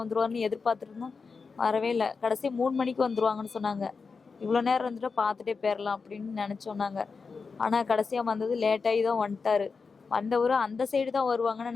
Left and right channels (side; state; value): right; quieter; 4.9 dB